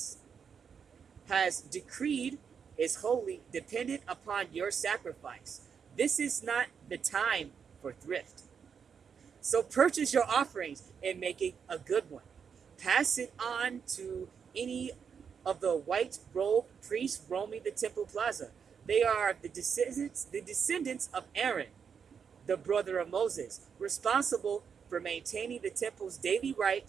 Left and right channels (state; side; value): quieter; left; 6.7 dB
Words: has decreed is wholly dependent upon your sacrifice. This is not the time for thrift. So purchase your offerings and make it a good one. Pass it on to any of the white-robed priests roaming the temple plaza. They are the descendants of Aaron, the brother of Moses, responsible for maintaining the temple's daily